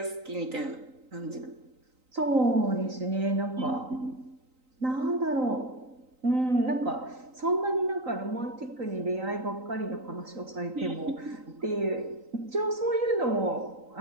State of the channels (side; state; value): left; late; 3.9 ms